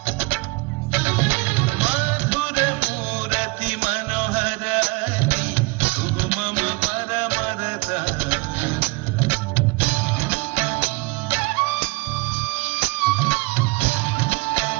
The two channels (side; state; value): left; quieter; 25.3 dB